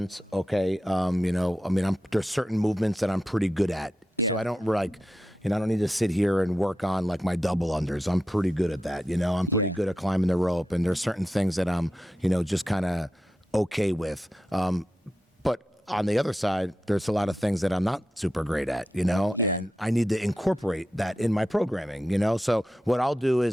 Okay. There's certain movements that I'm pretty good at. So I don't I don't need to sit here and work on like my double unders. I'm pretty good at that. I'm pretty good at climbing the rope, and there's certain things that I'm, just kind of okay with. But on the other side, there's a lot of things that I'm not super great at, and I need to incorporate that in my programming, So what I'll do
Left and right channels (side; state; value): both; normal; correlation 0.90